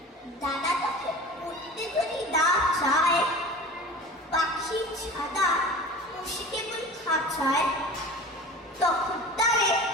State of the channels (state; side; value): normal; both; correlation 0.37